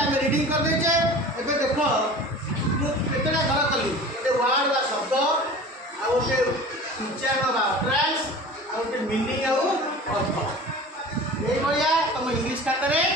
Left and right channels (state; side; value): normal; both; correlation 0.39